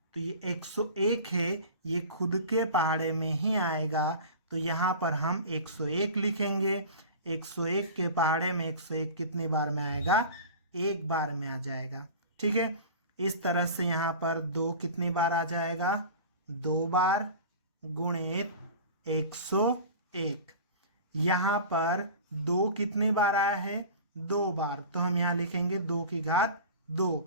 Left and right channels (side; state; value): both; inverted; correlation -0.36